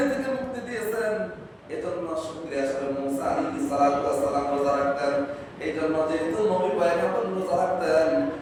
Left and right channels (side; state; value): both; identical; correlation 1.00